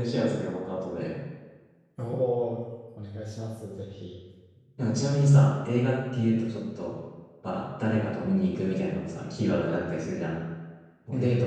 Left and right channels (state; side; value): identical; both; correlation 1.00